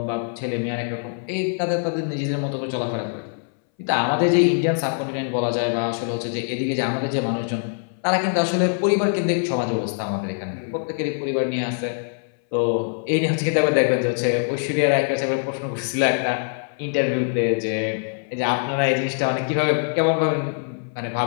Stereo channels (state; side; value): silent; right; 63 dB below the other